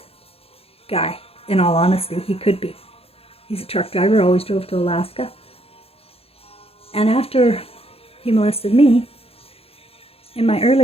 guy, in all honesty. He could be. He's a truck driver, always drove to Alaska. And after he molested me, in my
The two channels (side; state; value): right; late; 0.28 ms